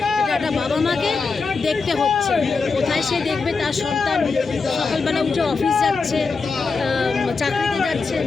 এটা একটা বাবা মাকে দেখতে হচ্ছে। কোথায় সে দেখবে তার সন্তান সকালবেলা উঠে অফিস যাচ্ছে, চাকরিতে যাচ্ছে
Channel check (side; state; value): right; quieter; 4.6 dB